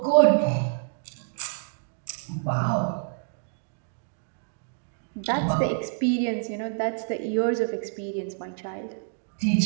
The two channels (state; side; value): silent; left; digital silence